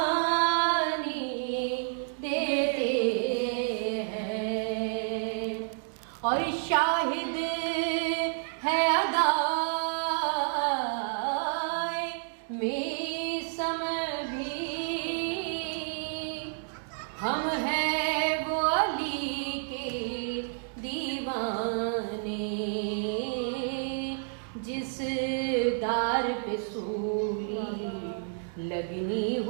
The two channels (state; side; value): silent; left; digital silence